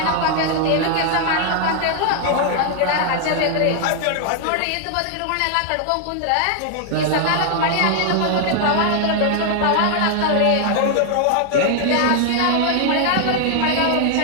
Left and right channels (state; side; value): different; both; correlation 0.00